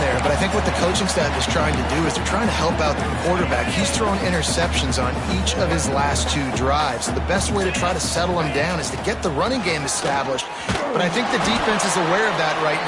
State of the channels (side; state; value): both; identical; correlation 1.00